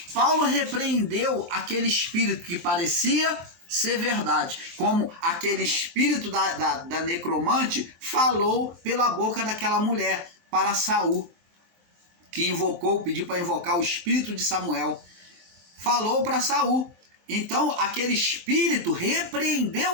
Paulo repreendeu aquele espírito que parecia ser verdade, como aquele espírito da necromante falou pela boca daquela mulher para Saul, que pediu para invocar o espírito de Samuel, falou para Saul. Então aquele espírito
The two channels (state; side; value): late; left; 23 ms